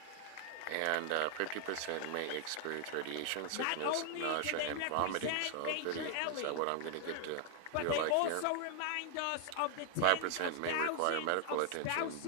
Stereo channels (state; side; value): different; both; correlation 0.00